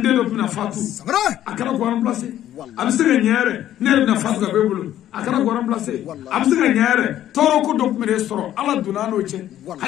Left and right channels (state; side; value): quieter; right; 12.1 dB